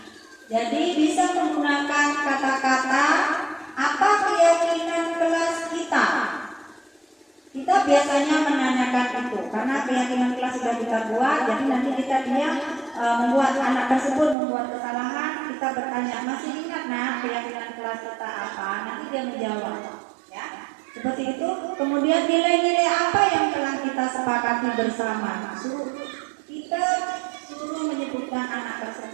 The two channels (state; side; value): drops out; left; at 14.4 s